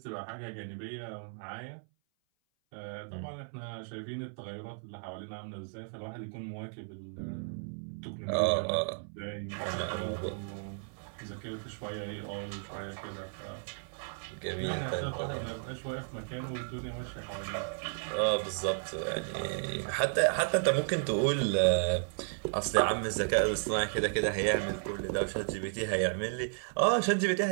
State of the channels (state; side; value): silent; left; 55 dB below the other